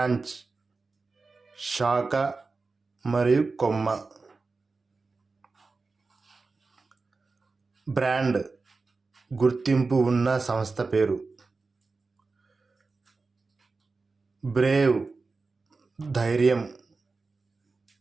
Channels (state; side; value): quieter; left; 4.0 dB